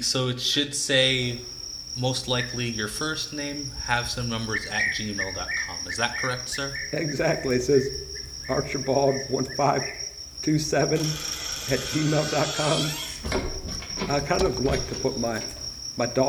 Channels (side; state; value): both; identical; correlation 1.00